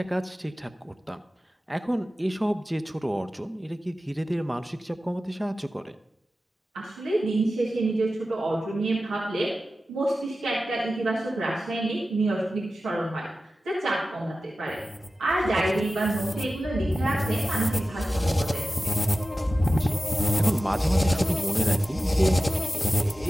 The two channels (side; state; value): both; normal; correlation 0.94